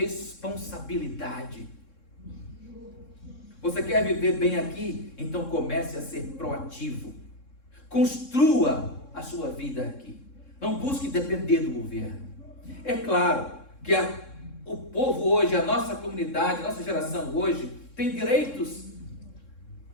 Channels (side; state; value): right; late; 3.7 ms